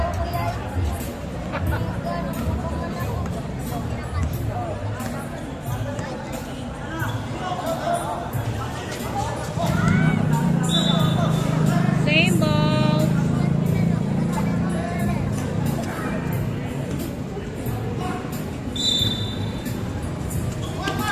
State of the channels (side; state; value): both; identical; correlation 1.00